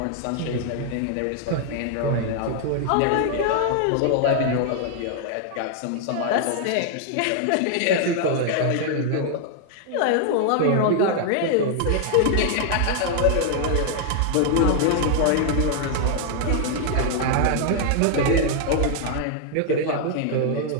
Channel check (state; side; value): different; both; correlation 0.00